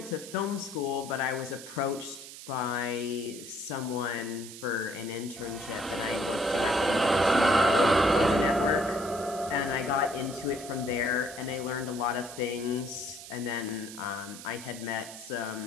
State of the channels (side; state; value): right; noise; hiss, 13 dB below the sound